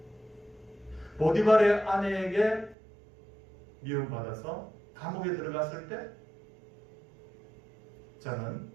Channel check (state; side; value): drops out; left; at 2.8 s